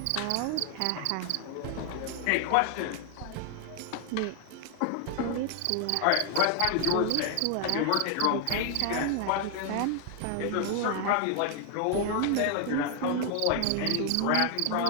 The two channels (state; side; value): different; both; correlation 0.00